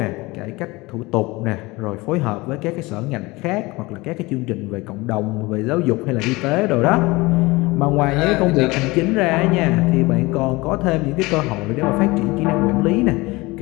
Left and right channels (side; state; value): right; quieter; 22.4 dB